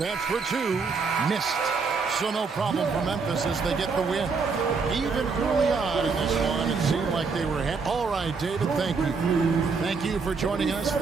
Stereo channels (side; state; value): left; quieter; 4.8 dB